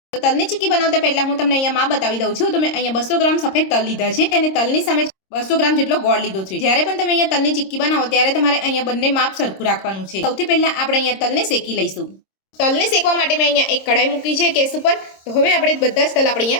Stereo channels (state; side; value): late; right; 26 ms